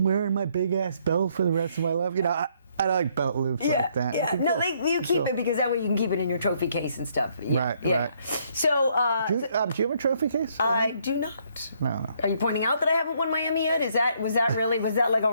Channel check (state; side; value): inverted; both; correlation -0.69